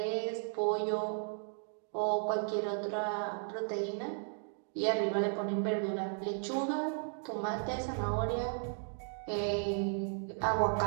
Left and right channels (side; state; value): left; silent; 54 dB below the other